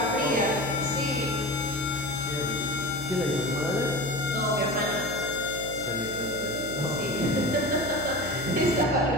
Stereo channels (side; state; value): left; noise; hum, 14 dB below the sound